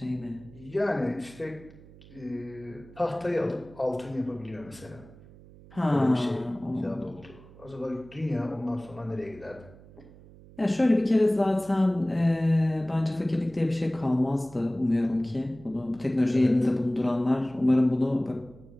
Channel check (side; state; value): right; noise; hum, 21 dB below the sound